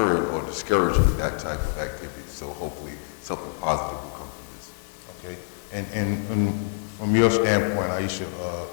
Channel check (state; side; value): silent; right; 61 dB below the other